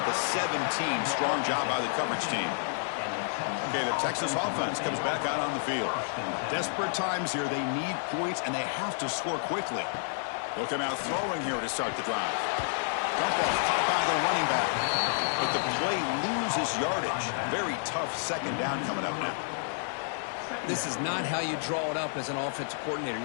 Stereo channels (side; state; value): right; silent; 58 dB below the other